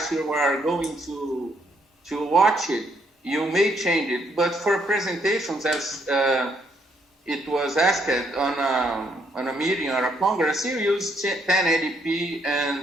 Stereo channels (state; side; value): normal; both; correlation 0.71